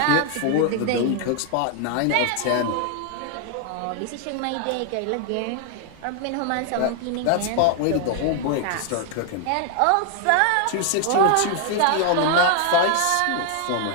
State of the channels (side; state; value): both; different; correlation 0.00